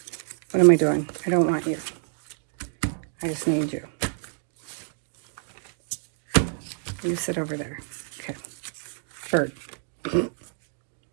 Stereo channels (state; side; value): silent; left; digital silence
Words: What am I doing? I don't want you. I just need you. You sit over there. Okay. Bird.